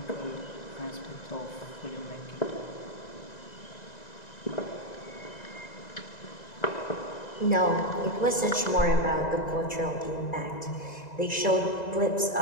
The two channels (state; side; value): late; right; 2.0 ms